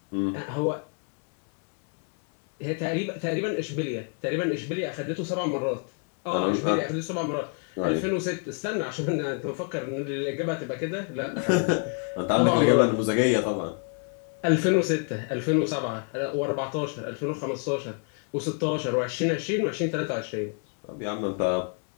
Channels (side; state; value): right; quieter; 39.7 dB